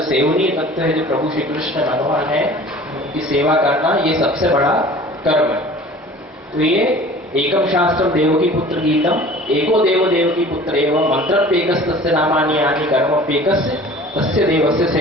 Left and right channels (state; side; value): normal; both; correlation 0.44